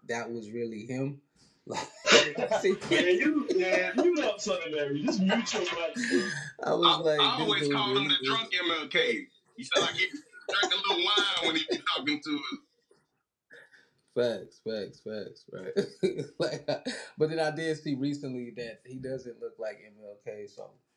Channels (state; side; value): identical; both; correlation 1.00